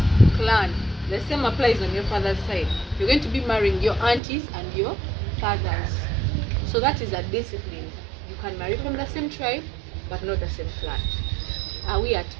clan. The same applies on your father's side. You're going to be marrying your aunties and your fathers. So that is a discipline. You can marry from the same tribe, but not the same clan. Are we at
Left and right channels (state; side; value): drops out; left; at 4.2 s